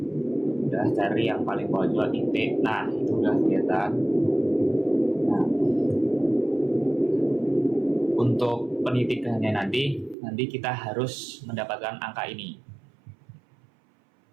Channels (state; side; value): drops out; left; at 10.2 s